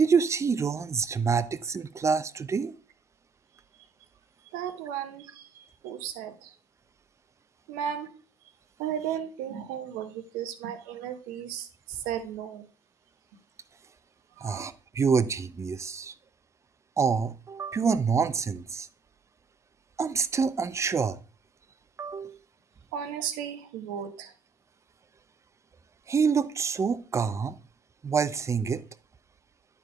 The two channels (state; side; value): quieter; left; 5.7 dB